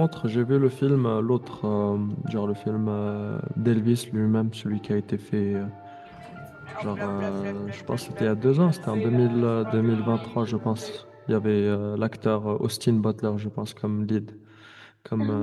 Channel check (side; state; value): both; identical; correlation 1.00